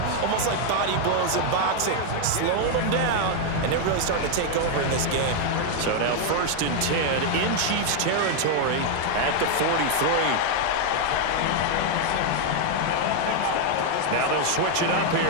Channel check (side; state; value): both; different; correlation 0.00